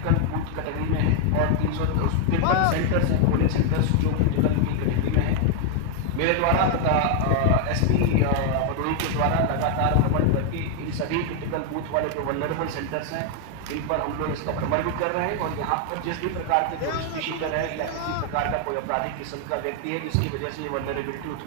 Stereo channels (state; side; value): different; both; correlation 0.00